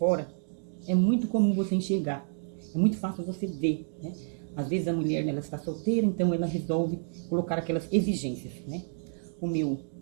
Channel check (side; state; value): left; silent; digital silence